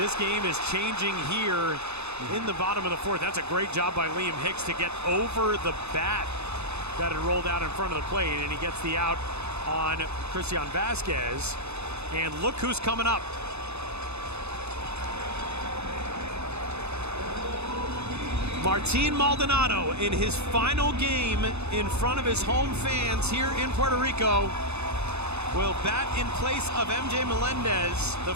game is changing here in the bottom of the 4th. That's a great job by Liam Hicks to get over the bat that had rolled out in front of the plate, and he gets the out on Christian Vasquez. And look who's coming up. Martin Maldonado, in his final game in front of his home fans here in Puerto Rico, will bat in place of MJ Melendez, the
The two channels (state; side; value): late; left; 0.80 ms